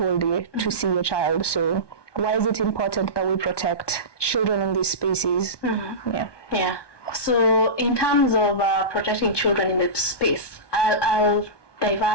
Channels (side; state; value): right; late; 1.2 ms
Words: day to see your child. So why is it important that we protect children in these spaces? So in terms of protecting children in the space, I'll